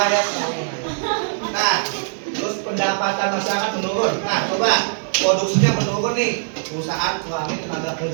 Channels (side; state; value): left; silent; digital silence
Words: ya. Nah, terus pendapatan masyarakat menurun. Nah, coba produksinya menurun nih. Perusahaan kurangi tenaga